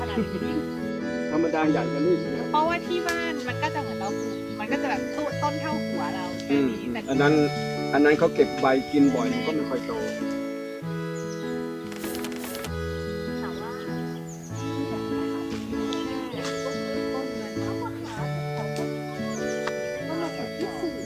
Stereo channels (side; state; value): both; identical; correlation 1.00